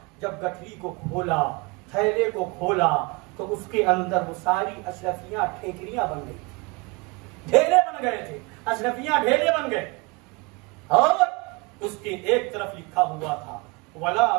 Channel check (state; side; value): quieter; left; 26.7 dB